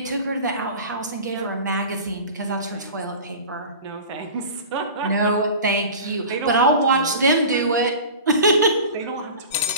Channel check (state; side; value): inverted; both; correlation -0.36